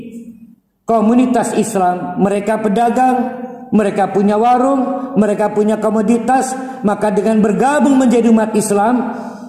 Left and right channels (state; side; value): identical; both; correlation 1.00